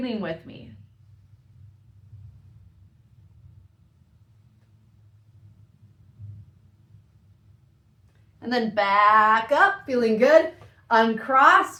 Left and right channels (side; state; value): both; identical; correlation 1.00